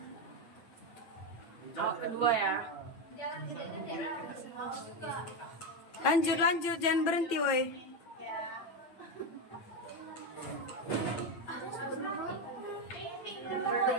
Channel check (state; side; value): late; right; 8.9 ms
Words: Oh, kedua ya. Lanjut, jangan berhenti, woi.